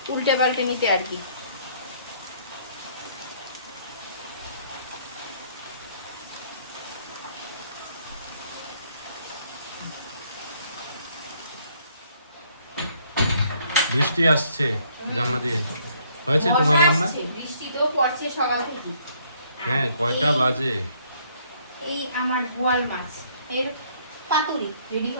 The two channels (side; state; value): both; inverted; correlation -0.65